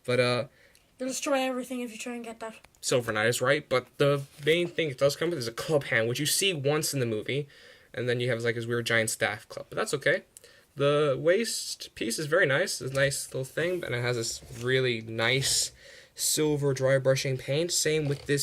But They'll destroy everything if you try and get that. Silver Knight is right, but the main thing it does come with is a club hand, which you see once in the movie, and then you have like his weird giant staff club. But that's okay. The waist piece is very nice. It's a nice little thing, and it has this really nice silver dry brushing paint. Same with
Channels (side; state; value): both; identical; correlation 1.00